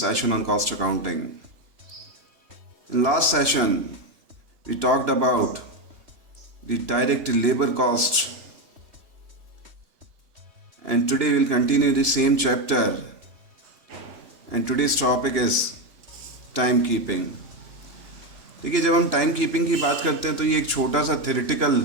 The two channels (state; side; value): late; left; 2.9 ms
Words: on cost accounting. In last session, we talked about the direct labor cost, and today we'll continue the same chapter. And today's topic is time keeping. देखिए, जब हम time keeping की बात करते हैं तो ये एक छोटा सा थ्योरेटिकल